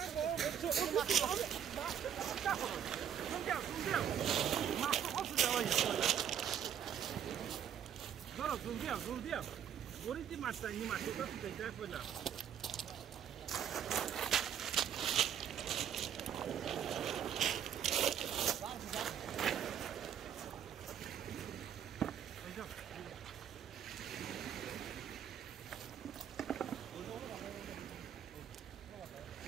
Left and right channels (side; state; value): left; quieter; 9.0 dB